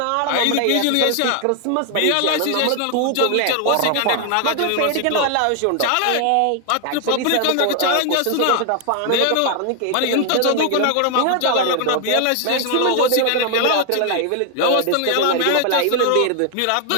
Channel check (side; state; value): both; different; correlation 0.00